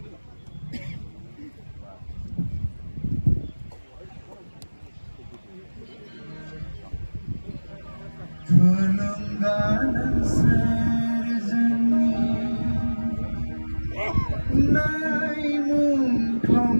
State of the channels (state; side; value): inverted; both; correlation -1.00